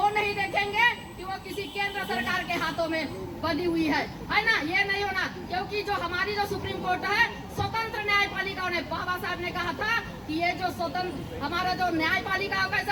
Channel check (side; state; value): both; identical; correlation 1.00